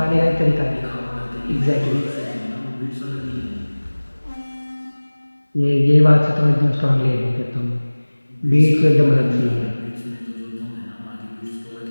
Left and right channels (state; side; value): inverted; both; correlation -1.00